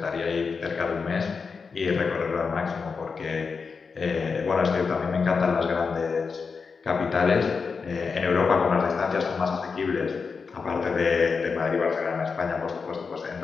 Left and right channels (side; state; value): right; quieter; 5.1 dB